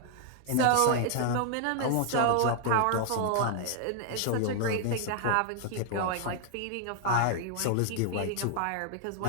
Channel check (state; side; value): different; both; correlation 0.00